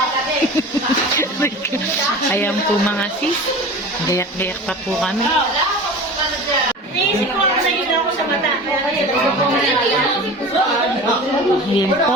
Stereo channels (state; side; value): normal; both; correlation 0.36